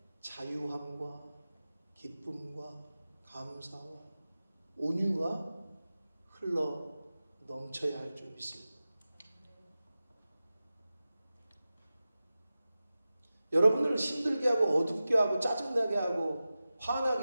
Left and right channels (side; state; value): both; inverted; correlation -0.95